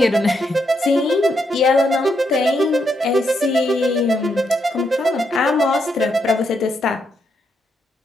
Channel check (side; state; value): both; normal; correlation 0.79